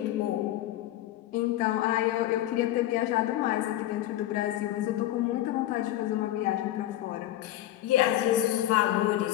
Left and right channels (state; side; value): quieter; right; 14.0 dB